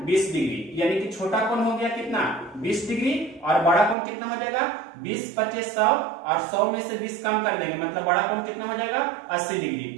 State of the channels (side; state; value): left; drops out; at 4.0 s